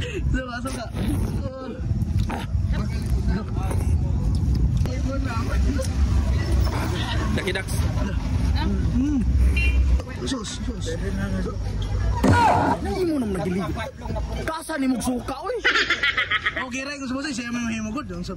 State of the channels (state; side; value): identical; both; correlation 1.00